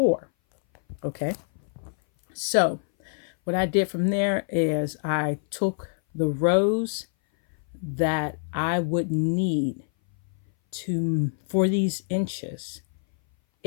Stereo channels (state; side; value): silent; right; 59 dB below the other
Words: Okay. So what I did from there is I took the rows that I would need for these inches